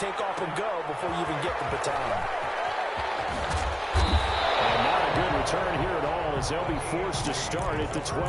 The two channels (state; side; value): identical; both; correlation 1.00